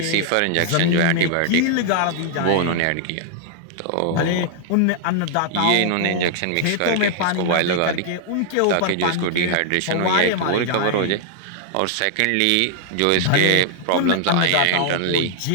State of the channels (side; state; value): both; different; correlation 0.00